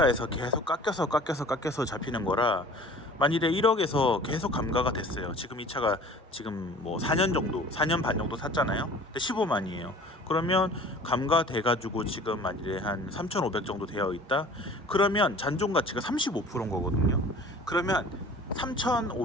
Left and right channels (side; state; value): both; normal; correlation 0.46